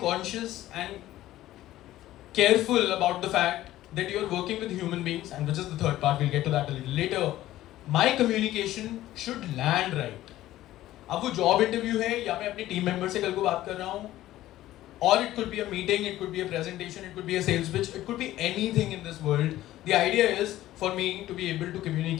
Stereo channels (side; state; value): right; quieter; 14.7 dB